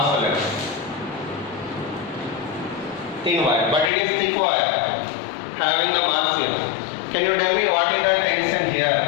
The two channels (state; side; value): drops out; right; at 3.9 s